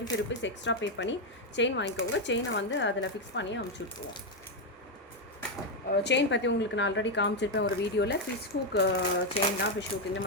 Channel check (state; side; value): normal; both; correlation 0.04